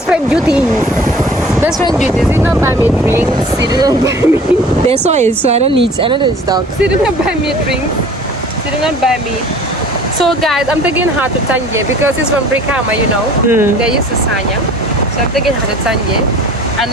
friend duties. Best friend duties. She did not buy me drinks. She did not buy me. They saw it, so I don't need stock. She did not buy me drinks. She did not buy me. So guys, I'm taking her to Tanje because she's from Brikama, you know. They're used to Sanyang. So I'm taking her to Tanje.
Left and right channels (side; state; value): both; normal; correlation 0.47